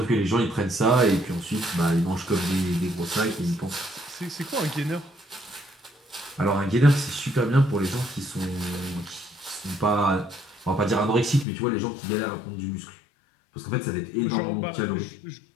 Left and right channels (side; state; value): right; drops out; at 11.5 s